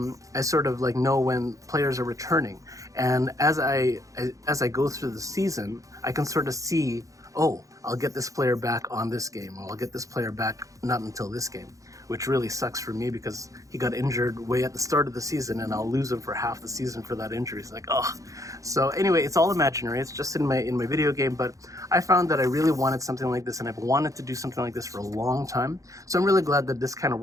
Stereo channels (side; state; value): left; late; 0.16 ms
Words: sort of like know when players are returning. And as I go through the season, I can sort of see, oh, I'll get this player back on this game, or I'll get this player back not until this game, which really sucks for me because he got injured way at the start of the season and I'll lose him for half the season for that injury. It's like, oh. So anyway, it's all imaginary. It's just in my video game, but I found that I really wanted something like this and I've wanted to do something like this for a long time. So I'm really glad that this kind of